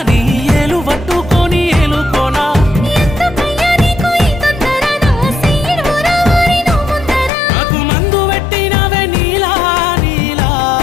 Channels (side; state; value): right; drops out; at 7.3 s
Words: నీ ఏలు పట్టుకొని ఏలుకోనా ఎందుకయ్యా నీకు ఈ తొందర నా సీడు రావారి నువ్వు ముందర నాకు మందు పెట్టినవే నీలా నీలా